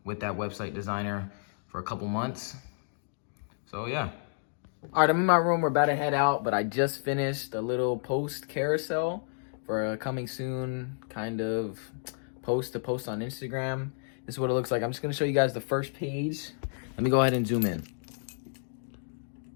with that website designer for a couple months. So yeah. All right, I'm in my room. We're about to head out, but I just finished a little post carousel for a coming soon kind of post to post on Instagram. This is what it looks like. I'm just gonna show you guys the first page. Let me go ahead and zoom in.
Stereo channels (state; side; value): silent; right; digital silence